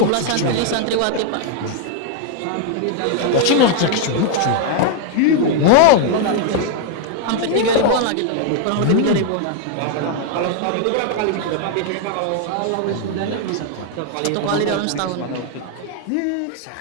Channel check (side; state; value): both; different; correlation 0.00